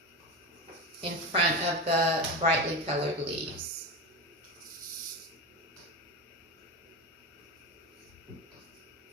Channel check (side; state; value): both; normal; correlation 0.21